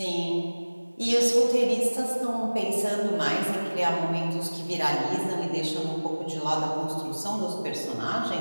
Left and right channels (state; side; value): inverted; both; correlation -1.00